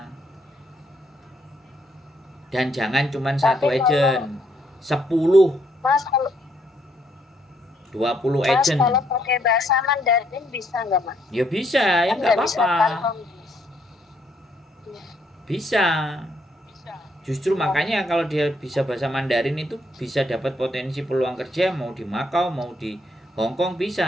Dan jangan cuman satu Tapi kalau agent. 10, Mas kalau 20 Mas agent. kalau pakai bahasa Mandarin bisa nggak Mas? Ya bisa, ya Kan nggak nggak bisa apa-apa. paham. Iya. Bisa. Justru makanya kalau dia bisa bahasa Mandarin itu bisa dapat potensi peluang kerja mau di Makau mau di Hong Kong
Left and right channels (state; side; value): normal; both; correlation 0.72